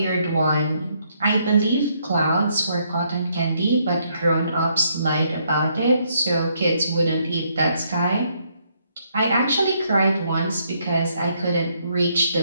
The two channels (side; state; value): both; inverted; correlation -0.72